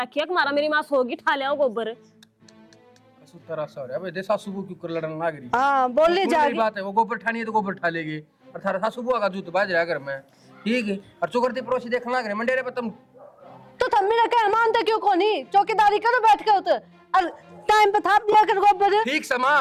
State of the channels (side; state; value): both; identical; correlation 1.00